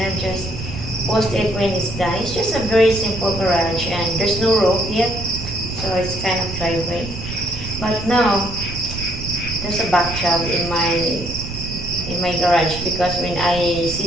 just post it when it's done. It's just a very simple garage, and there's no roof yet, so it's kind of driveway. But now there's a back job in my garage, because when I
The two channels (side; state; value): right; noise; rumble, 9 dB below the sound